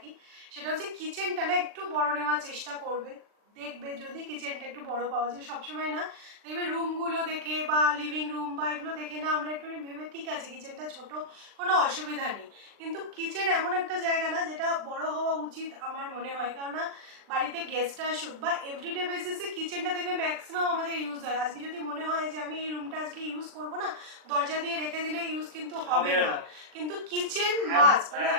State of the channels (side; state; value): left; late; 39 ms